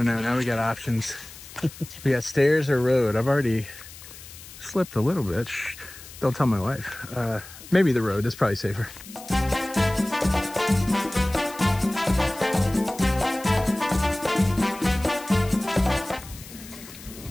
know, now we got options. We got stairs or road. I've already slipped a little bit. Shh, don't tell my wife. Maybe the road is probably safer.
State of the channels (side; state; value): left; noise; hiss, 17 dB below the sound